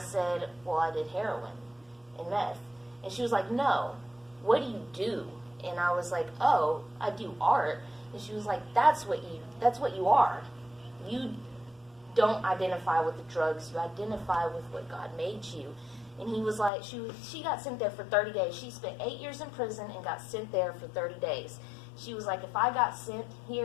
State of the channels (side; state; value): right; drops out; at 16.7 s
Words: well, I did heroin and meth. And she was like, no, what do you do? And I was like, oh, I do art. And she was like, that's what you are. You don't identify with the drugs. You identify with what God made you. And he was like, she got sent there for 30 days. She spent 8 years in prison and got sent there for 30 days. She was like, if I got sent